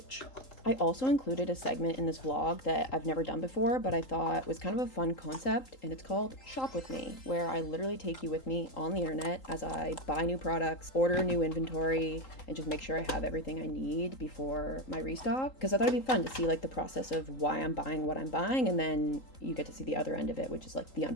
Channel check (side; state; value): right; late; 3.8 ms